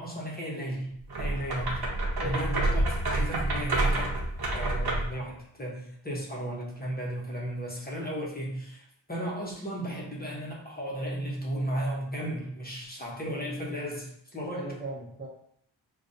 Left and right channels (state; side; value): normal; both; correlation 0.56